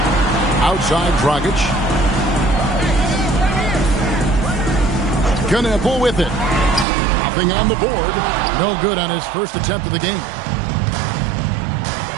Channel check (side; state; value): left; drops out; at 6.9 s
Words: Outside Dragic. Knepel with it. Nothing on the board. No good on his first attempt of the game.